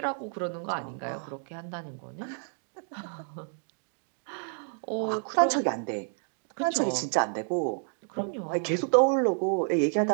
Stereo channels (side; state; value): left; silent; 58 dB below the other